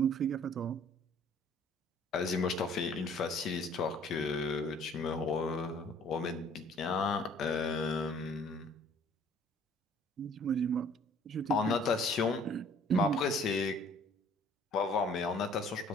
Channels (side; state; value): both; normal; correlation 0.55